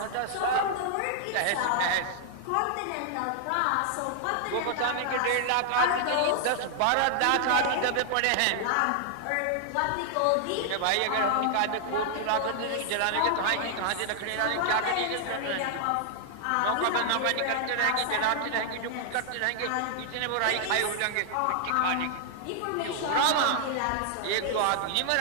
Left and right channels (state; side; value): different; both; correlation 0.00